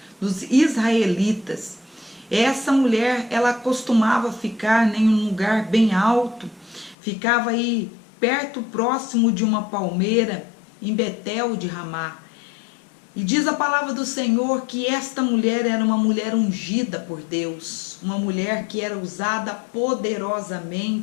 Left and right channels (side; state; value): right; drops out; at 7.0 s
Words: israelitas. Essa mulher, ela costumava ficar em um lugar bem alto, ficava aí perto, próximo de uma palmeira, em Betel de Ramá. E diz a palavra do Senhor que esta mulher era uma mulher ungida por Deus, uma mulher que era usada